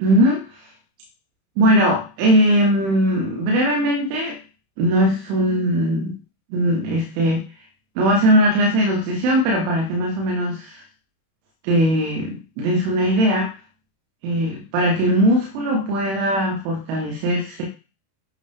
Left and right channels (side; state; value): left; late; 31 ms